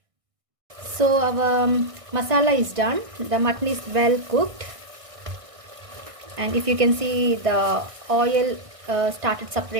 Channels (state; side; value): late; left; 1.6 ms